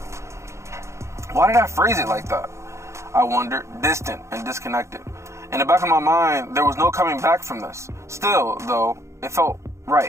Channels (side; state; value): left; late; 0.14 ms